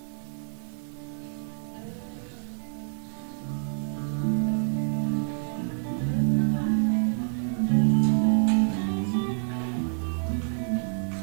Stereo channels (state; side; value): silent; left; 55 dB below the other